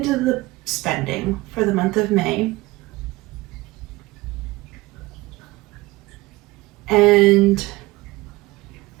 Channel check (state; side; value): quieter; left; 21.0 dB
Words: the spending for the month of May. And